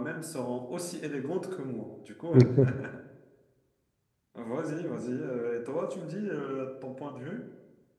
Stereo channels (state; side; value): identical; both; correlation 1.00